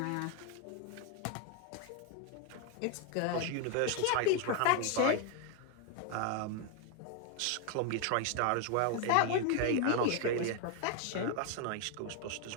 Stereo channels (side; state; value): both; different; correlation 0.01